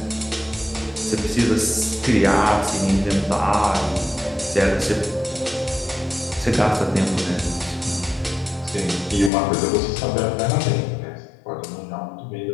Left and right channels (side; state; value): right; drops out; at 9.3 s